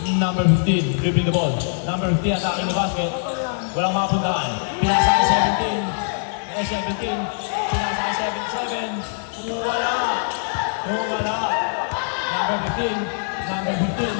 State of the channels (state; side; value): silent; right; 64 dB below the other